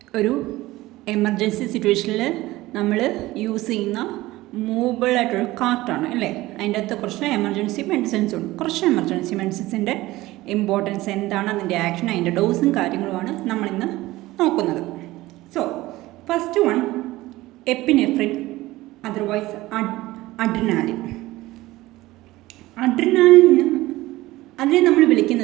ഒരു എമർജൻസി സിറ്റുവേഷനിൽ നമ്മൾ യൂസ് ചെയ്യുന്ന മൂവബിൾ ആയിട്ടൊരു കാർട്ടാണ് അല്ലേ. അതിൻ്റെ അകത്ത് കുറച്ച് എമർജൻസി മെഡിസിൻസ് ഉണ്ട്. കുറച്ച് എമർജൻസി മെഡിസിൻസിൻ്റെ ഇമ്പോർട്ടൻസ് എന്താണ്, അതിൻ്റെ ആക്ഷൻ, അതിൻ്റെ ഡോസും കാര്യങ്ങളുമാണ് നമ്മളിന്ന് നോക്കുന്നത്. So first one epinephrine, otherwise adrenaline. അഡ്രിനാലിന് അതിനെ നമ്മൾ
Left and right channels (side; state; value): left; quieter; 18.1 dB